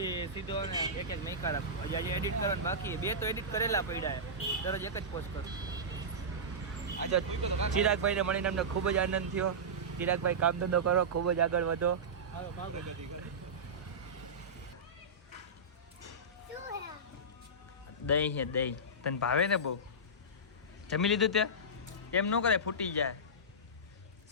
સીધો ને એક મેકા રાખું. હજી આજે એડિટ કરવાનું બાકી. 2 તો એડિટ કરેલા પડ્યા, દરરોજ એક જ પોસ્ટ કરું. આજે ચિરાગભાઈને મળીને અમને ખૂબ જ આનંદ થયો. ચિરાગભાઈ કામ ધંધો કરો, ખૂબ જ આગળ વધો. દહીં છે દહીં. તને ભાવે ને બહુ? જમી લીધું તે? એમ ન કરે, ફૂટી જાય.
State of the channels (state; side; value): normal; both; correlation -0.15